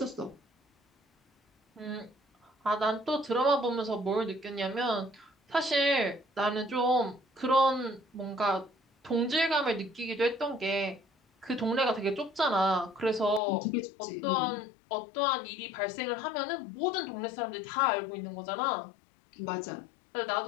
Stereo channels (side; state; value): right; drops out; at 13.4 s